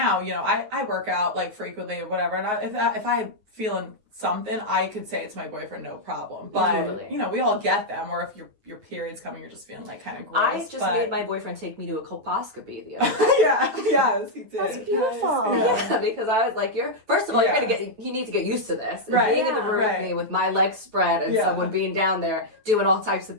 I work out like frequently or whatever, and if I feeling something, I could say it to my boyfriend, no problem. But we all get them. Or if your period's coming, you're just feeling like kind of gross. I just made my boyfriend take me to a colposcopy the other day. Yes, he did. That's beautiful. Yeah, because I was like, first of all, you need to get used to this. Right. Being in the room with me with my legs spread and someone being down there doing all types of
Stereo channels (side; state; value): left; late; 9.4 ms